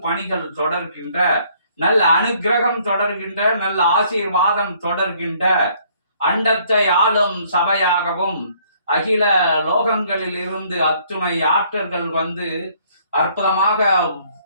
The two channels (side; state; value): both; inverted; correlation -0.63